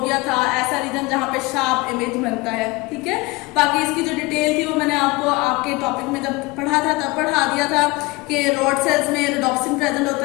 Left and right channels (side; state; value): right; quieter; 23.3 dB